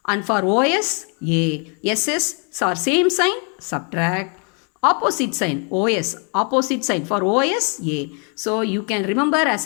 and for OS, A. SS are same sign, subtract. Opposite sign, OS, opposite sign for OS, A. So you can remember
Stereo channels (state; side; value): quieter; right; 38.3 dB